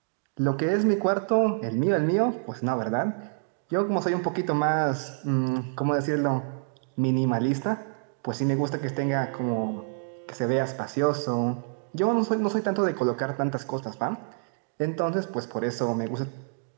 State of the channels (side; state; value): left; silent; digital silence